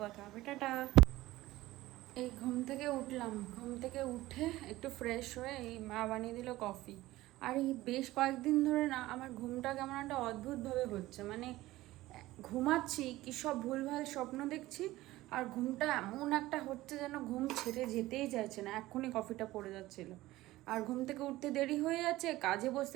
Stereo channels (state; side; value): quieter; left; 17.2 dB